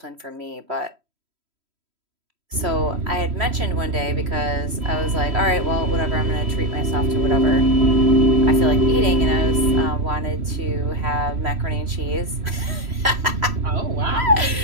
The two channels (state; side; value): late; left; 3.1 ms